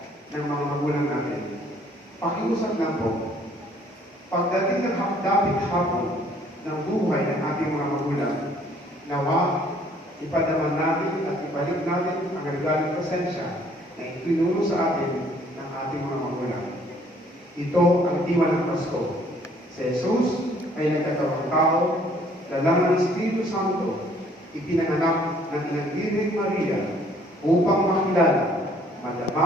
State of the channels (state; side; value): normal; both; correlation 0.60